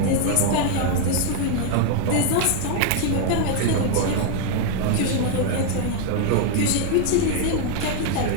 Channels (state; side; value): different; both; correlation 0.00